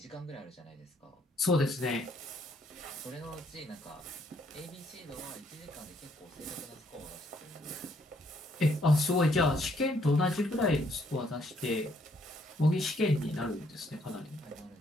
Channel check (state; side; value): normal; both; correlation 0.69